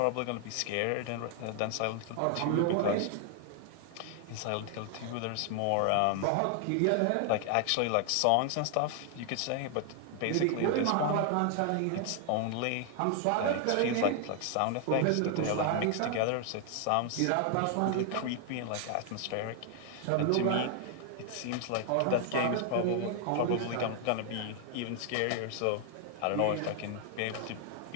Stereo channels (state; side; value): different; both; correlation 0.00